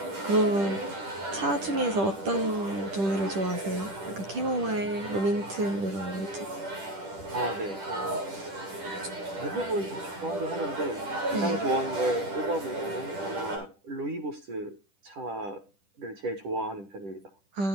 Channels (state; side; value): late; left; 10 ms